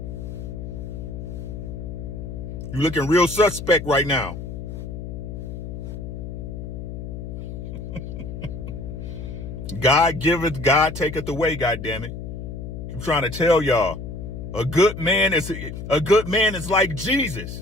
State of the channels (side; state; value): left; noise; hum, 8 dB below the sound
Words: You looking real suspect right now. God giveth, God taketh away, goddammit. I'm trying to tell y'all. A good man is like